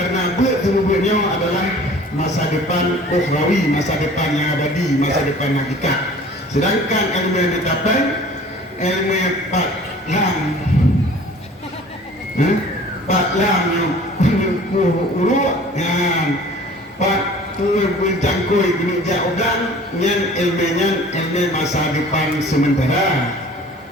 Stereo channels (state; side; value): normal; both; correlation 0.47